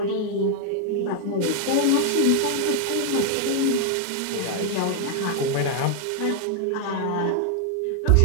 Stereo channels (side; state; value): both; different; correlation 0.00